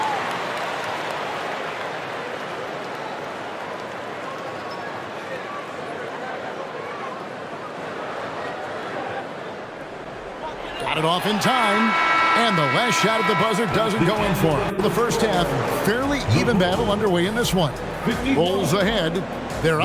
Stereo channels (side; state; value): both; identical; correlation 1.00